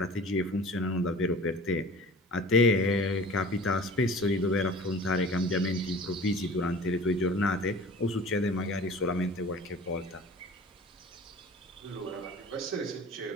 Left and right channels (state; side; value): normal; both; correlation 0.43